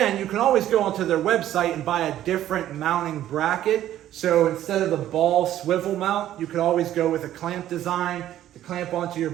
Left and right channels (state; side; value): quieter; left; 12.4 dB